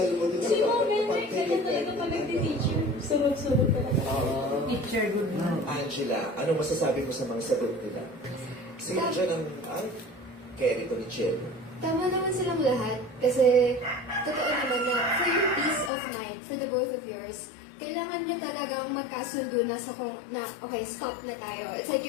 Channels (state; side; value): drops out; right; at 15.9 s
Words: Si Mom Benedict, kaya talaga pag nagti-teacher. Sunod-sunod talaga. Teacher, good man. Angela, ano masasabi mo sa mga sagot nila? Sino dyan ang carry to ni Chelo? Tama naman silang lahat kasi totoo naman na for your peace of mind, for the both of yours, kailangan nyo talagang magkasundo na sa kung na, okay, stop na tayo. It's like